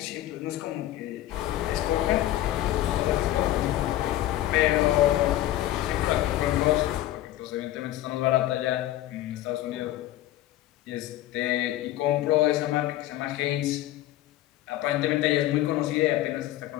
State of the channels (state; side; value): quieter; right; 14.5 dB